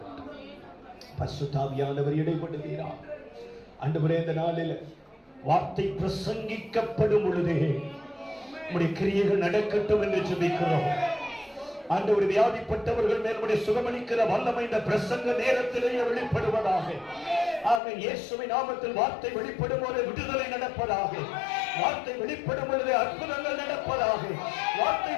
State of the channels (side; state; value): right; drops out; at 17.8 s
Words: பரிசுத்த ஆவியானவர் இடைப்படுகிறார் ஆண்டவரே. இந்த நாளில் வார்த்தை பிரசங்கிக்கப்படும் பொழுதே உடைய கிரியைகள் நடக்கட்டும் என்று ஜெபிக்கிறோம். ஆண்டவர், வியாதிப்பட்டவர்கள் மேல் சுகமளிக்கிற வல்லமை இந்த பிரசங்க நேரத்திலேயே வெளிப்படுவதாக. ஆமென். இயேசுவின் நாமத்தில் வார்த்தை வெளிப்படும் போது விடுதலை நடப்பதாக. வார்த்தை வெளிப்படும் பொழுது அற்புதங்கள் நடப்பதாக. வார்த்தை